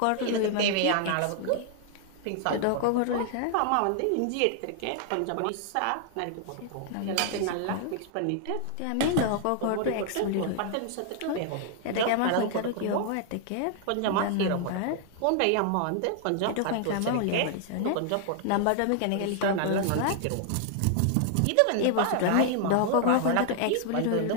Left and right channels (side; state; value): both; different; correlation 0.00